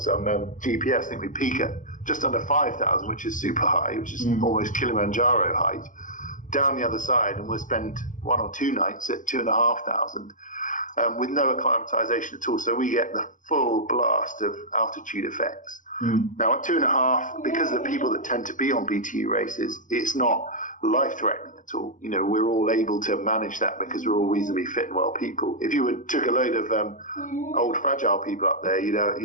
on GPS. I think we peak at just under 5,000, which is super high, which is almost Kilimanjaro height. Down the other side, and we'll spend 1 or 2 nights at 2,500 with no acclimatization at all. So we get the full blast of altitude effects. Now at 2.5, because of the people that tend to be on BTU races, it's not life-threatening at all. You know, we're all able to manage that because we're all reasonably fit and well people. If you took a load of old fragile people up there,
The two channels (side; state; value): right; late; 0.37 ms